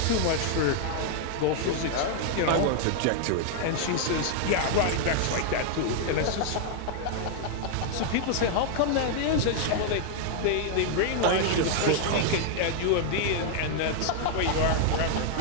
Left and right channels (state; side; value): different; both; correlation 0.00